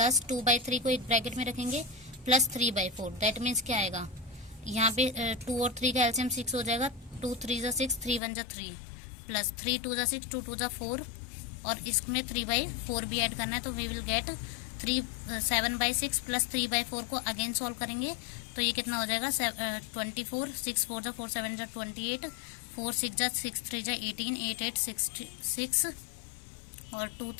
2/3 को एक ब्रैकेट में रखेंगे प्लस 3/4। दैट मीन्स क्या आएगा, यहाँ पे 2 और 3 का एलसीएम 6 हो जाएगा, 2 3 जा 6, 3 1 जा 3, प्लस 3 2 जा 6, 2 2 जा 4, और इसमें 3/4 भी ऐड करना है। तो वी विल गेट 7/6 प्लस 3/4 को अगेन सॉल्व करेंगे, तो ये कितना हो जाएगा 24, 6 4 जा 4 7 जा 28, 4 6 जा 6 3 जा 18, 8 8 6 और 2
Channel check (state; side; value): drops out; right; at 8.2 s